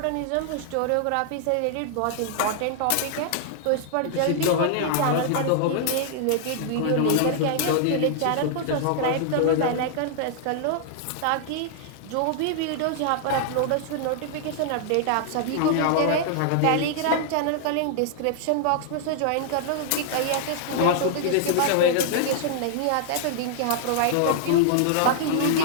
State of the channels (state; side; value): different; both; correlation -0.01